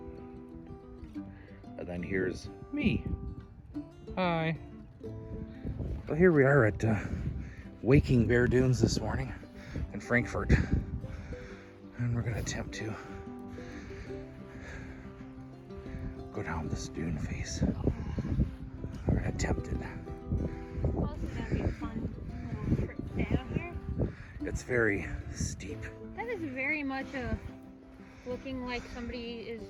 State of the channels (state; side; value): identical; both; correlation 1.00